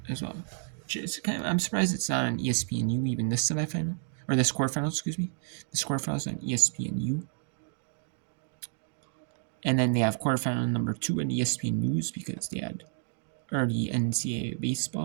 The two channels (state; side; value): silent; left; digital silence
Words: as well, I'm surprised it's not on ESPNU even this semifinal or this quarterfinal. Excuse me, this quarterfinal is on ESPNU. And then they have quarterfinal number 2 on ESPN News because they had already NCAA